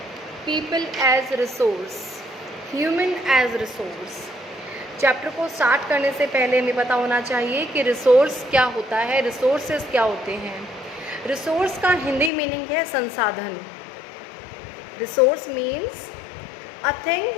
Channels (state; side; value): drops out; right; at 12.3 s